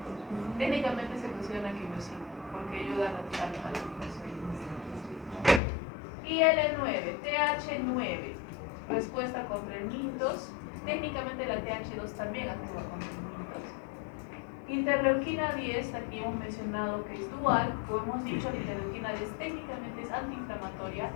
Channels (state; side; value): drops out; right; at 5.6 s